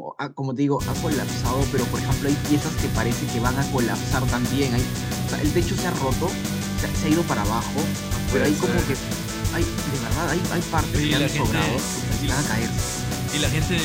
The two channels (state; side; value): identical; both; correlation 1.00